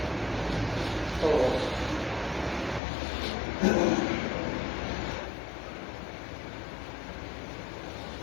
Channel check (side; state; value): right; drops out; at 2.8 s